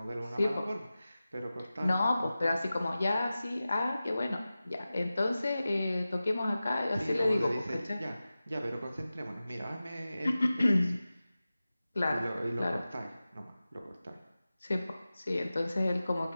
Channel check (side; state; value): both; inverted; correlation -0.95